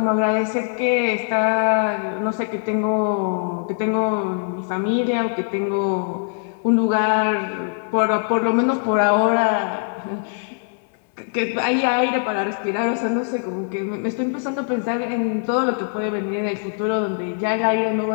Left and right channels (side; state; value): right; silent; 64 dB below the other